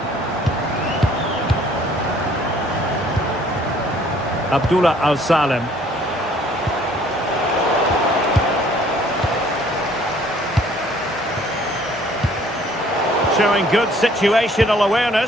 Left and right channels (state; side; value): normal; both; correlation 0.58